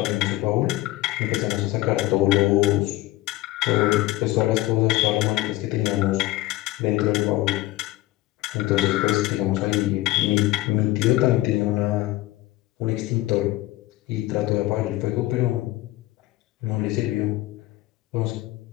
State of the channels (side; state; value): right; quieter; 17.4 dB